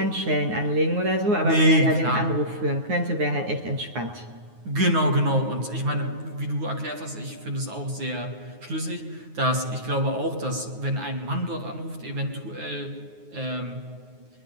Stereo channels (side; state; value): left; late; 9.5 ms